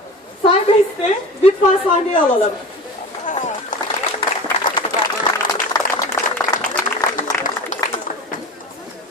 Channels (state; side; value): normal; both; correlation 0.34